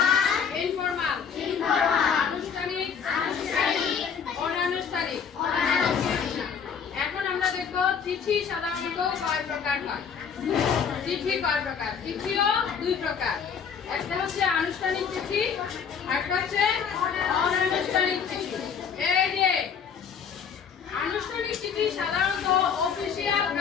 ইনফর্মাল, আনুষ্ঠানিক, অনানুষ্ঠানিক। এখন আমরা দেখবো চিঠি সাধারণত কয় প্রকার হয়। চিঠি কয় প্রকার? চিঠিও 2 প্রকার, একটা হচ্ছে আনুষ্ঠানিক চিঠি আর একটা হচ্ছে অনানুষ্ঠানিক চিঠি। এই যে আনুষ্ঠানিক চিঠি সাধারণত অফিসিয়াল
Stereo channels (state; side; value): quieter; right; 6.9 dB